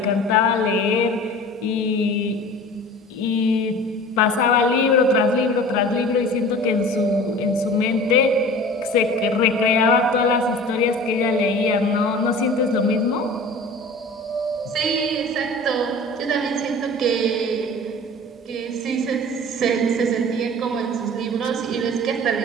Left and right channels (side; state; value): both; normal; correlation 0.40